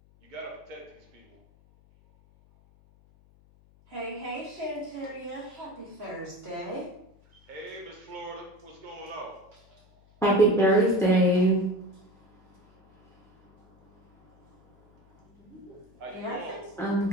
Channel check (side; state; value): left; noise; hum, 29 dB below the sound